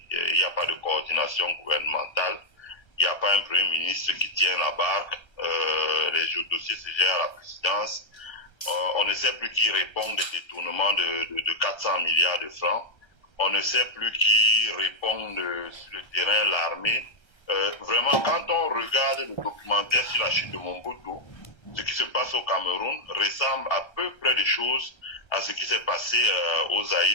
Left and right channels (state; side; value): late; right; 1.3 ms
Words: Il n'y a pas de coordination gouvernementale. Il n'y a pas un premier ministre qui tient la barque. Les dossiers se gèrent à la présidence. On ne sait plus qui répond des détournements de 400 milliards de francs. On ne sait plus qui répond sur le terrain, l'armée. Vraiment, quand on regarde le documentaire sur la chute de Mobutu, ce qui se passe au Cameroun ressemble à peu près des choses à ce qui s'est passé aux